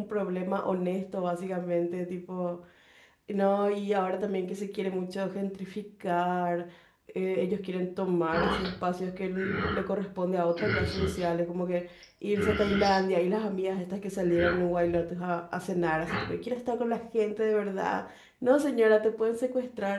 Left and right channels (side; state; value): both; identical; correlation 1.00